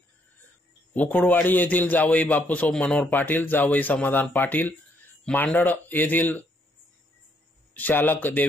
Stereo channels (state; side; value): normal; both; correlation 0.71